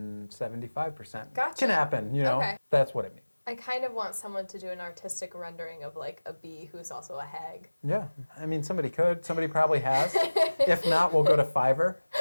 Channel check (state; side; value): inverted; both; correlation -1.00